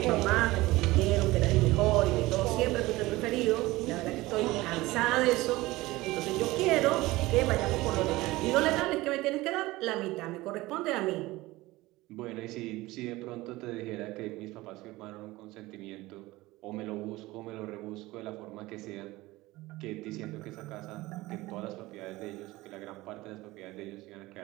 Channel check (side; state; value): left; quieter; 19.5 dB